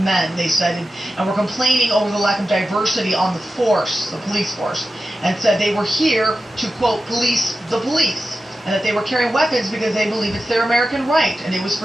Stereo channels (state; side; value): normal; both; correlation 0.92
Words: they said, and were complaining over the lack of diversity on the force, the police force, and said they were here to, quote, police the police, and that they were carrying weapons because they believe it's their American right, and it was